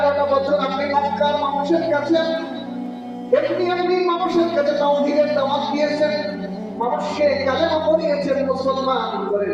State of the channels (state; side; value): identical; both; correlation 1.00